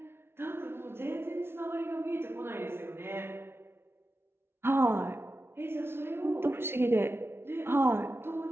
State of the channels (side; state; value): left; late; 0.12 ms